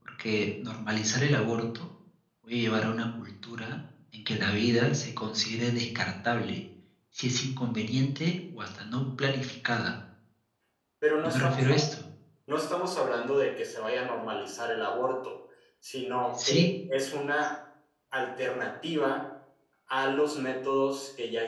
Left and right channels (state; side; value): identical; both; correlation 1.00